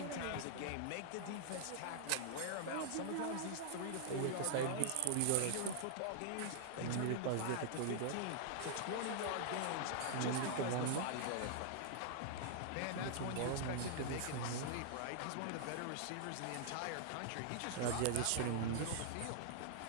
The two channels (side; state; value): both; different; correlation -0.01